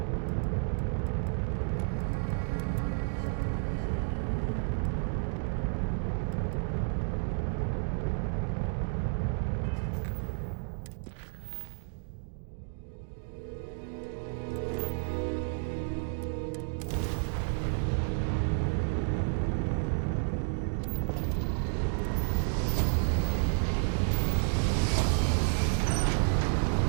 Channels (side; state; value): left; silent; 56 dB below the other